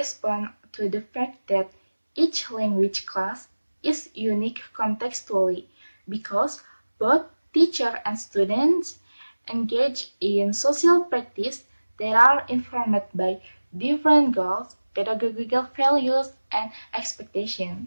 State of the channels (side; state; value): both; inverted; correlation -1.00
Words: to the fact that each language class is unique contextually because both teacher and students engage in social practice that are informed by different goals, pedagogical values, and